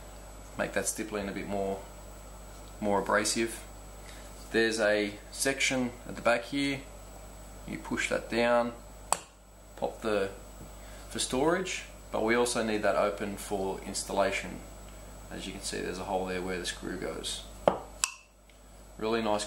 make that stippling a bit more abrasive. There's a section at the back here. You push that down, pop for storage, but we also need that open for installation. As you can see, there's a hole there where the screw goes. Really nice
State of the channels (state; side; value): identical; both; correlation 1.00